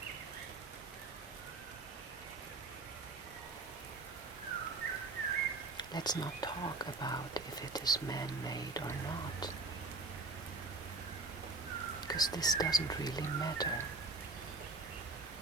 Let's not talk about if it is man-made or not, because this doesn't really matter.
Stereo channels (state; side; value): quieter; left; 3.7 dB